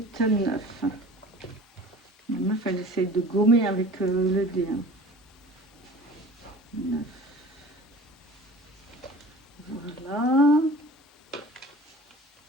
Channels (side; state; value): both; normal; correlation 0.43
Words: 9. La meuf elle essaye de gommer avec le dé. 9. Voilà.